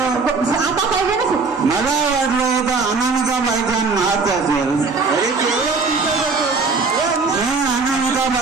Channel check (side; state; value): left; quieter; 4.4 dB